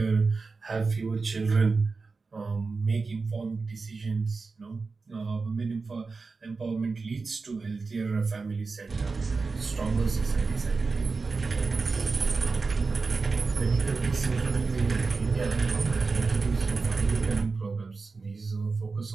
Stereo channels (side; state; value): left; quieter; 4.2 dB